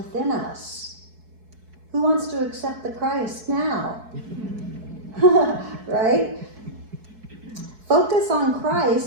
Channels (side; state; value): left; late; 4.6 ms